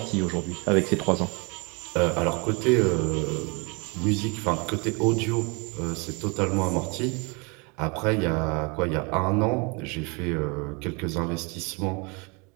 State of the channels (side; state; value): left; quieter; 30.6 dB